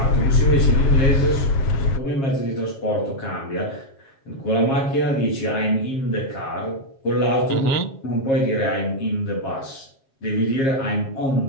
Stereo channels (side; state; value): right; late; 7.4 ms